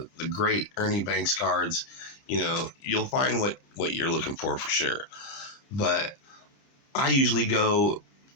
great Ernie Banks cards. You'll find what you're looking for sure. But I usually go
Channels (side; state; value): right; late; 30 ms